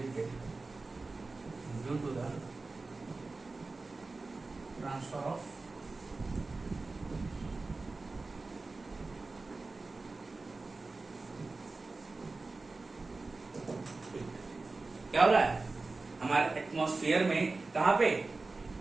due to the transfer of heat. क्या हो रहा है हमारे atmosphere में, कहां पे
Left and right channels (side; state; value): left; quieter; 3.6 dB